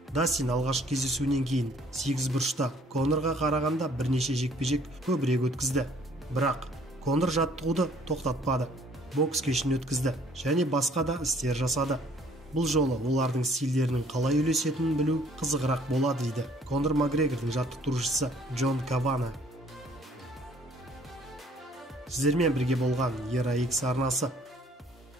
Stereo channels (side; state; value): both; normal; correlation 0.59